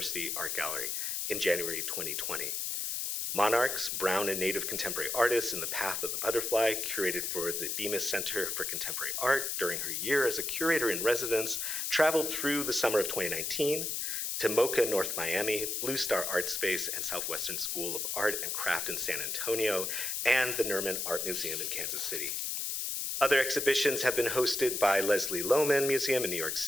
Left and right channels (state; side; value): noise; left; hiss, 1 dB below the sound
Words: Art Gallery in January 2020. Monarchs, Brown and Native Contemporary Artists in the Path of the Butterfly, curated for the Bemis Center for Contemporary Art during her year as a curator in residence, traveled through the summer of 2019 to MoCA North Miami, Blue Star Art Space, and Southwestern School of Art and Craft in San Antonio, and the Nerman Art Museum in Kansas City. Other exhibitions have been hosted by Leslie Lohman Museum in New York